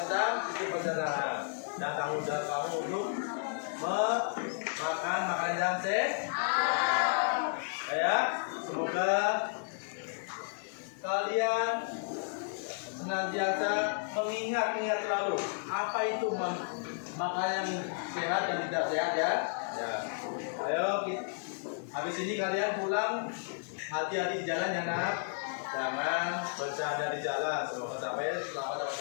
sisi pencernaan dan tanggung jawab kamu untuk makan makanan yang sehat. Ya, semoga kalian senantiasa mengingat selalu apa itu makanan yang sehat dan tidak sehat ya. Ya, ayo habis ini kalian pulang hati-hati di jalan ya nak, jangan bercanda di jalan. Semoga sampai selamat dapat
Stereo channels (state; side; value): silent; right; digital silence